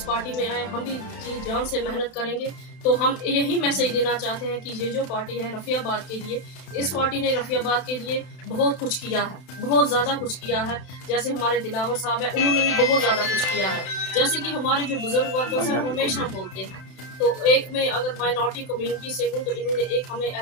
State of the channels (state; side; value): late; right; 32 ms